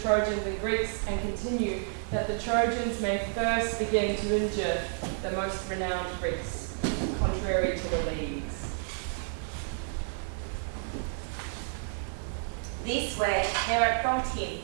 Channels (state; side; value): silent; left; digital silence